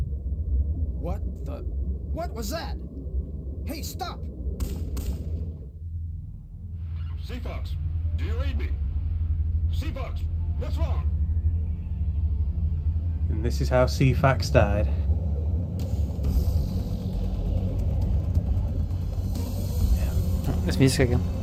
What the? What was that? Hey, stop! Seafox, do you read me? Seafox, what's wrong? And this is how CFAX died. There's music again.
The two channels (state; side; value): identical; both; correlation 1.00